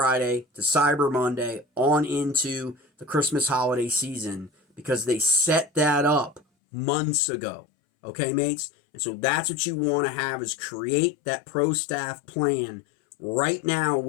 to Cyber Monday on into the Christmas holiday season because they set that up months ago. Okay, mates? And so that's what you want to have is create that pro staff plan right now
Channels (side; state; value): right; drops out; at 6.4 s